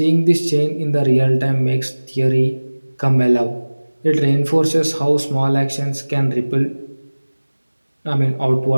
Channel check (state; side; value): inverted; both; correlation -1.00